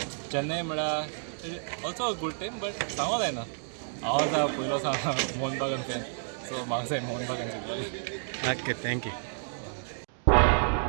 Chennai म्हळ्यार also a good team but सांगो जायना. हांव आसा पयलो मोहन बागान फॅन सो म्हाका जाय मोहन बागान जिखतली. Okay thank you.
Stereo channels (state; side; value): silent; left; digital silence